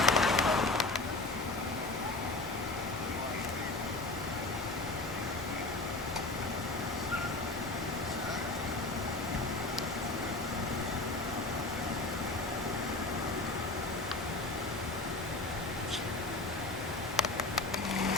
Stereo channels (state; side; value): quieter; right; 3.1 dB